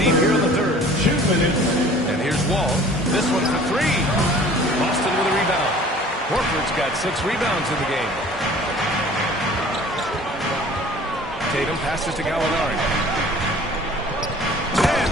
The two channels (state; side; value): normal; both; correlation 0.48